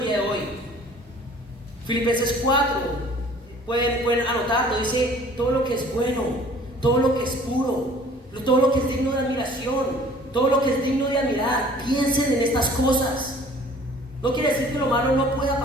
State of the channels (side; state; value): both; normal; correlation 0.51